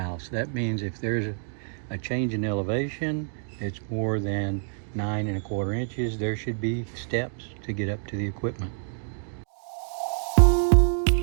That means if there's a change in elevation, it's more than 9 1/4 inches, there should be steps to get up to the equipment.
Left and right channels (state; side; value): silent; left; 60 dB below the other